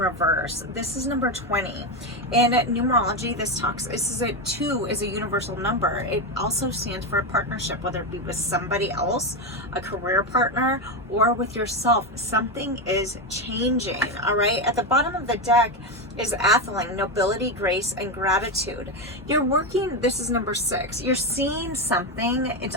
This is number 20. In numerology, this is 2 is a universal number. It also stands for a partnership, whether it be with somebody else, a career partner, or with yourself. Something is changing, all right? At the bottom of the deck is Atheling, nobility, grace, and gratitude. You're working, this is number 6. You're seeing something. It's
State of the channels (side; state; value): both; normal; correlation 0.11